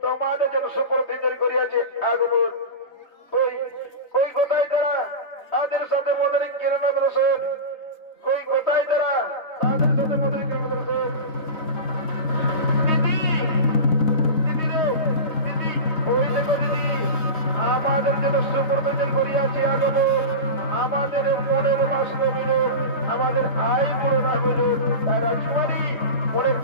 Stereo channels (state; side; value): late; right; 3.2 ms